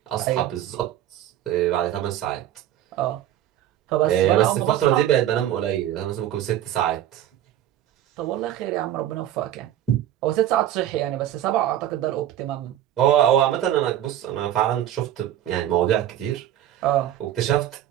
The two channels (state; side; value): quieter; left; 12.1 dB